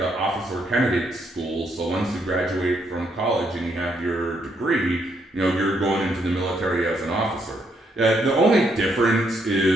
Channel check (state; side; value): normal; both; correlation 0.75